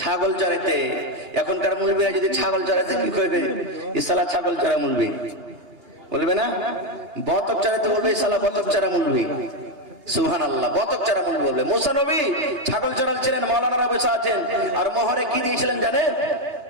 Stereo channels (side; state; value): left; late; 2.8 ms